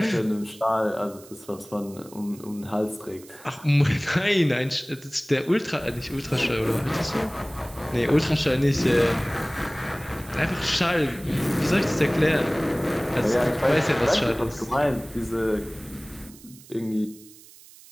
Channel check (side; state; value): right; noise; hiss, 22 dB below the sound